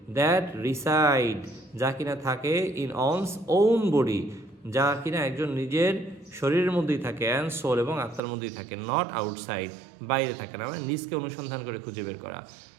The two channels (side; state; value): left; drops out; at 8.2 s